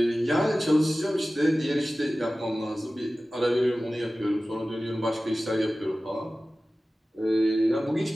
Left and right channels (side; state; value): both; normal; correlation 0.96